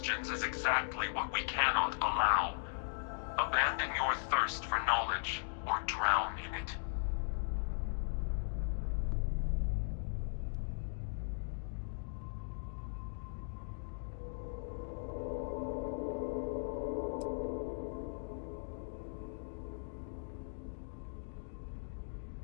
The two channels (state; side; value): silent; right; digital silence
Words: is exactly what we cannot allow. Abandon your thirst for knowledge, or drown in it.